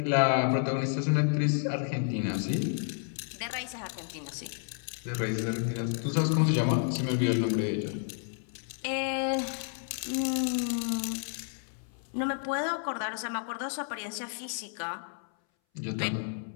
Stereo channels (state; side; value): silent; right; 57 dB below the other